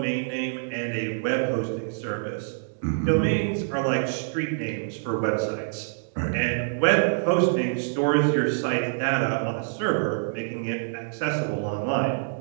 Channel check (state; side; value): silent; left; digital silence